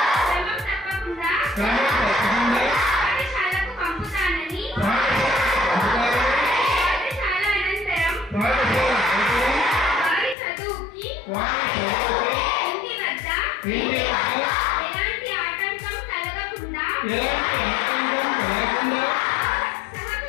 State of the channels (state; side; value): drops out; right; at 10.4 s